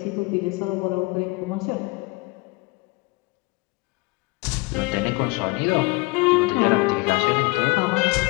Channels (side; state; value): right; quieter; 25.3 dB